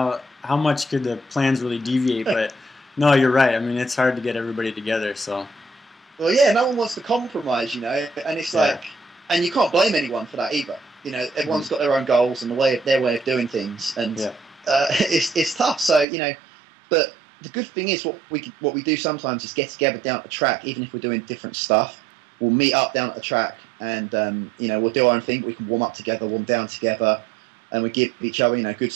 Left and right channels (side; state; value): left; drops out; at 16.1 s